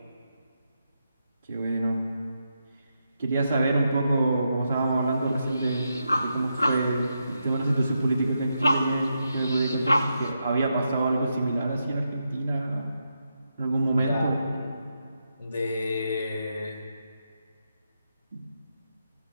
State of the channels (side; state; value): both; inverted; correlation -0.84